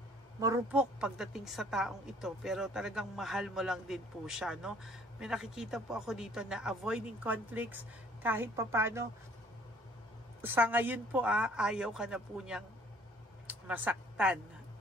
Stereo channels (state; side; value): normal; both; correlation 0.57